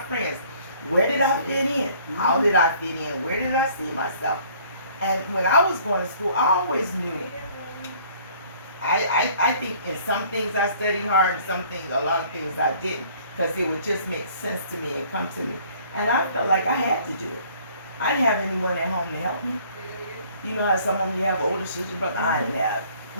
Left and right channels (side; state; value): both; inverted; correlation -0.56